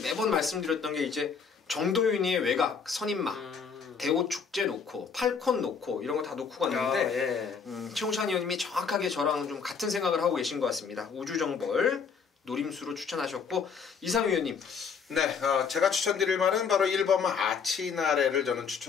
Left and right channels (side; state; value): right; quieter; 6.0 dB